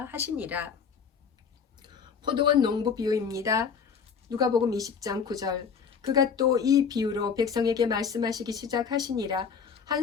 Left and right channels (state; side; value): quieter; right; 6.3 dB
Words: 하시니라. 포도원 농부 비유입니다. 누가복음 20장 9절. 그가 또 이 비유로 백성에게 말씀하시기 시작하시니라.